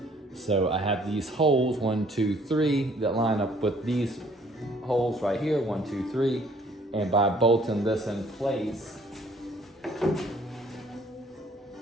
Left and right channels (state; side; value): normal; both; correlation 0.60